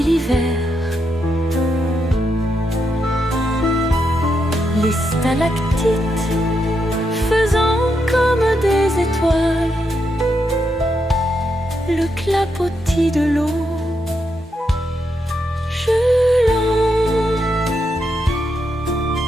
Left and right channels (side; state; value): both; normal; correlation 0.82